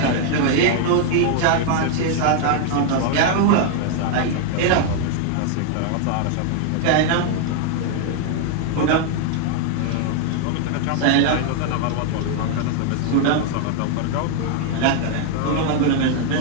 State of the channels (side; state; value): both; different; correlation 0.00